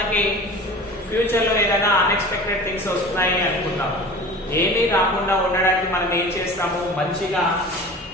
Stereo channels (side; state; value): right; noise; hum, 28 dB below the sound